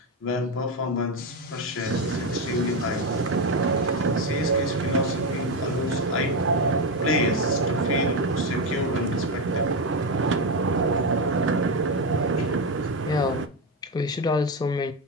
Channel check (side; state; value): both; normal; correlation 0.11